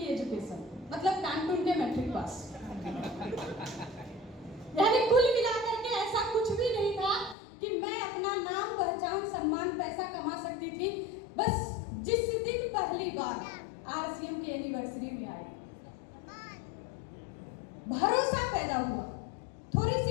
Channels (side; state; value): right; drops out; at 7.4 s